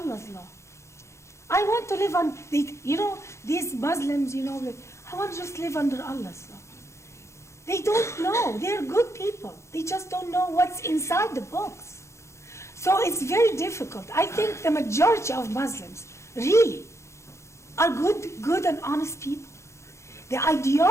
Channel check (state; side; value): late; right; 0.14 ms